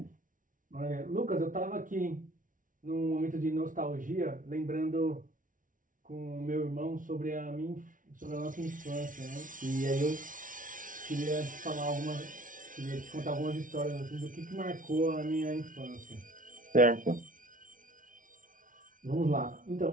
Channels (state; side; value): late; left; 0.38 ms